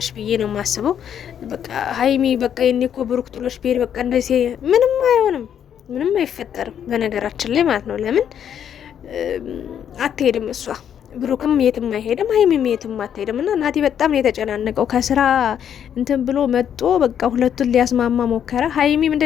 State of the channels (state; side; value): quieter; right; 9.0 dB